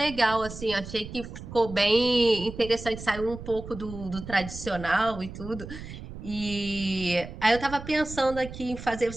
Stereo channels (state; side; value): noise; right; rumble, 12 dB below the sound